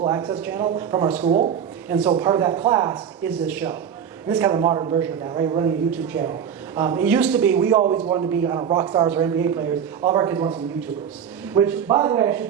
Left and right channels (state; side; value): quieter; left; 8.1 dB